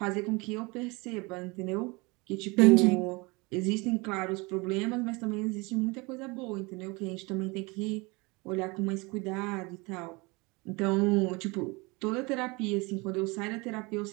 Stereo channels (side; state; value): left; quieter; 26.1 dB